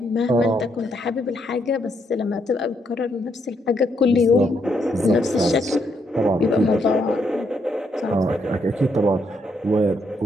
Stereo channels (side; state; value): both; normal; correlation 0.75